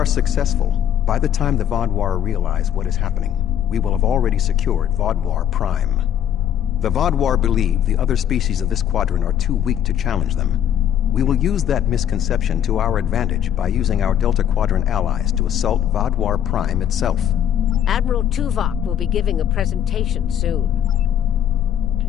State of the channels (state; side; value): quieter; right; 10.0 dB